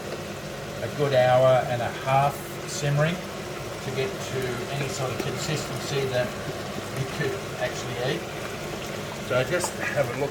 a good hour and a half simmering to get to any sort of consistency that you could actually eat. So just have a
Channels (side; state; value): right; noise; hum, 24 dB below the sound